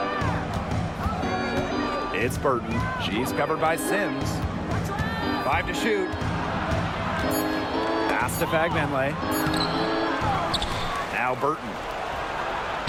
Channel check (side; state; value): both; identical; correlation 1.00